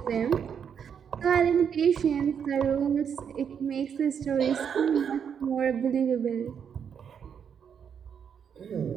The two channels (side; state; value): left; quieter; 7.6 dB